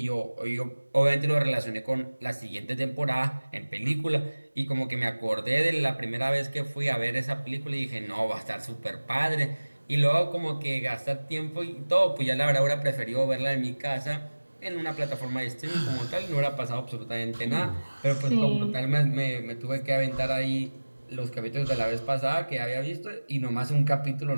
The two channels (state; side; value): inverted; both; correlation -1.00